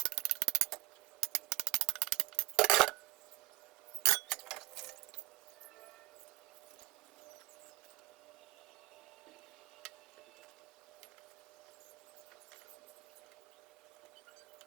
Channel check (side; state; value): left; quieter; 19.9 dB